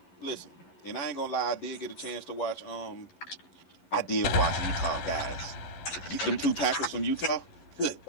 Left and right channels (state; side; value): late; right; 11 ms